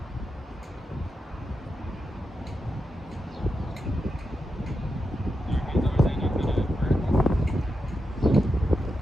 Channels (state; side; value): normal; both; correlation 0.87